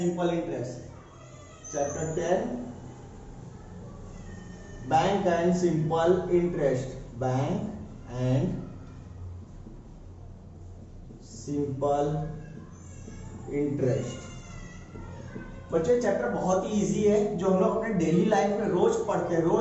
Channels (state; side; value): identical; both; correlation 1.00